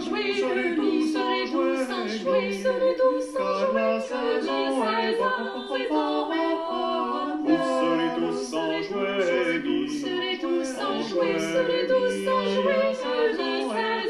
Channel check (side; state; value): both; identical; correlation 1.00